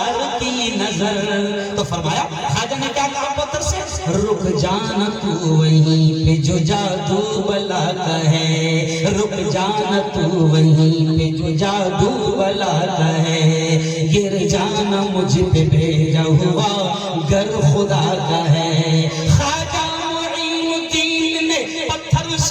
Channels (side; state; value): both; identical; correlation 1.00